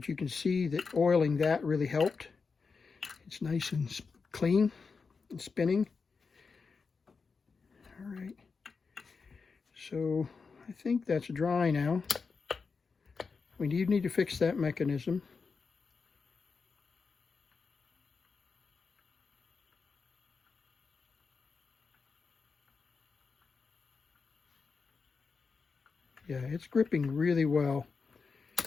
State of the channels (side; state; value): right; quieter; 4.9 dB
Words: you can see that oiling that really helped. It's nice and clean and spinning. All right. So I think that's dry now. We need to fix that mechanism. Yeah, it's gripping really well.